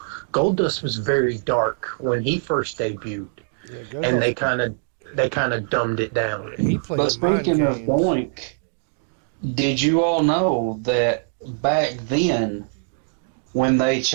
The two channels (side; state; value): left; silent; digital silence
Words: Gold Dust was very dark when he first debuted, Yeah, go and they ahead. kind of dumbed it down. He played But mind speaking of games. Doink, did you all know that back then, when they